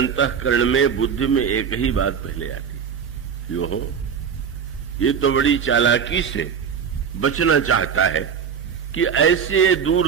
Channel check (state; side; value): quieter; left; 7.1 dB